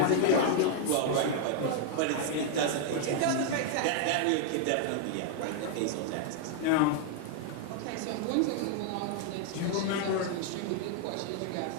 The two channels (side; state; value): both; different; correlation -0.01